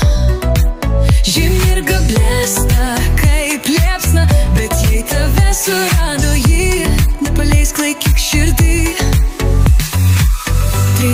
Žymi ir gablėsta kaip liepsna, bet jei tave surado ji, nepaleisk, laikyk širdį. Tai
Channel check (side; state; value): both; identical; correlation 1.00